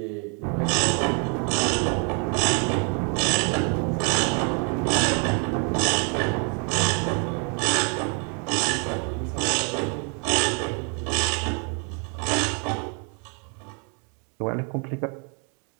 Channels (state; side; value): quieter; left; 38.3 dB